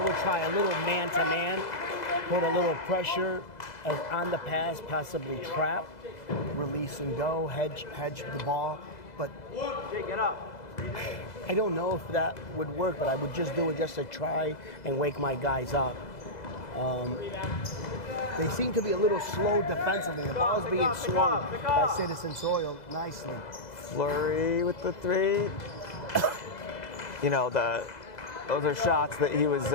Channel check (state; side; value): late; right; 2.0 ms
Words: try a little man-to-man, put a little pressure on the pass, possibly trap, release and go, hedge the ball. But Get up. I don't know if that would work, but I would just do it just to try and wake my guys up. They seem to be a little slow defensively. The ball is being swung by Citizens Oil nicely. Flurry with the three. Those are shots that he was